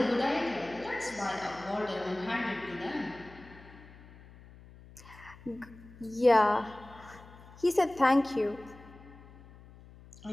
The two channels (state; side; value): noise; left; hum, 20 dB below the sound